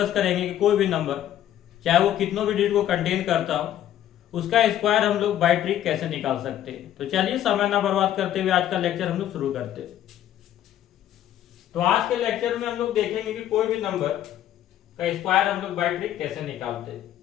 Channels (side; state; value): right; quieter; 11.7 dB